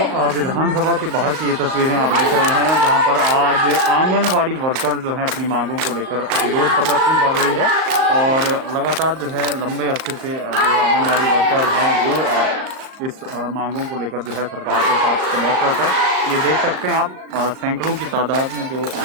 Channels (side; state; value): left; late; 38 ms